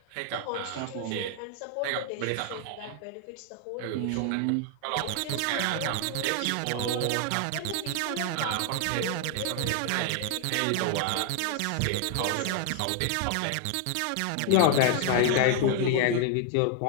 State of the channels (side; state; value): both; different; correlation 0.00